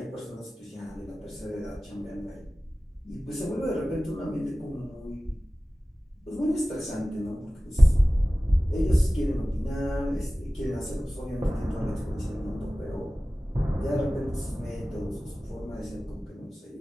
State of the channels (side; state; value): both; normal; correlation 0.97